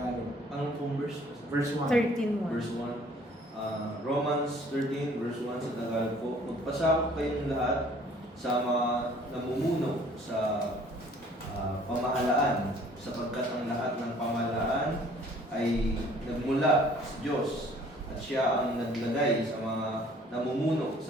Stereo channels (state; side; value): normal; both; correlation 0.55